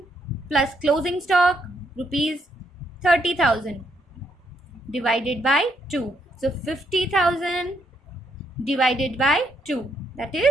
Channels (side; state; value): both; normal; correlation 0.75